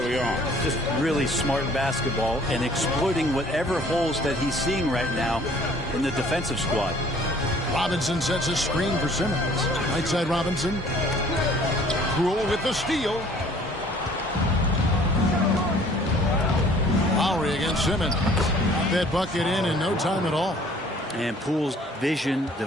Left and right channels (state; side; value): normal; both; correlation 0.55